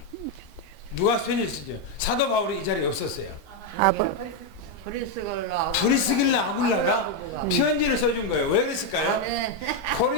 편지를 쓰죠? 사도 바울이 이 자리에 없었어요. 브리스길라 아굴라가 편지를 써준 거예요. 왜 그랬을까요?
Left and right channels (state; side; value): normal; both; correlation 0.03